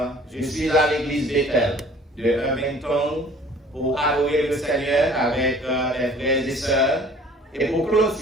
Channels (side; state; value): both; normal; correlation 0.51